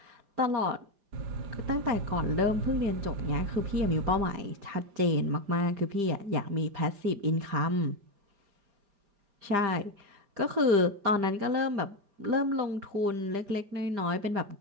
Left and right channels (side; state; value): left; late; 5.0 ms